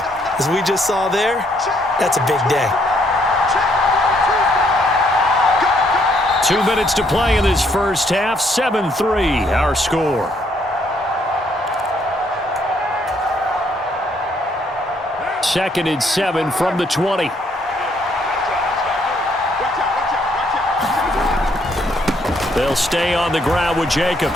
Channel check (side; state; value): both; normal; correlation 0.69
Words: as we just saw there, that's a big day. 2 minutes to play in this first half. 7-3, our score. Second and 7 from the 20. They'll stay on the ground with